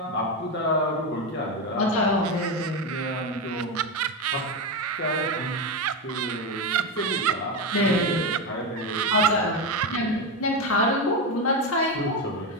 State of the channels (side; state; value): both; normal; correlation 0.13